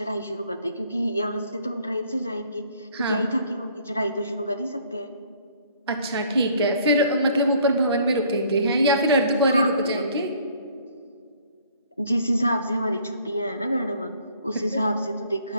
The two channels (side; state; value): both; inverted; correlation -0.59